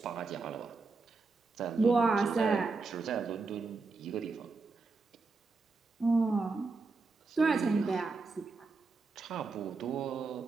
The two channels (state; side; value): quieter; left; 4.1 dB